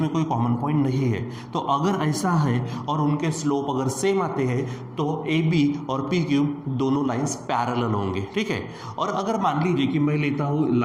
कोई कॉमन पॉइंट नहीं है। तो अगर ऐसा है और उनके स्लोप अगर सेम आते हैं तो ए बी और पी क्यू दोनों लाइंस पैरेलल होंगे, ठीक है। और अगर मान लीजिए कि मैं लेता हूँ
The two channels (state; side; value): identical; both; correlation 1.00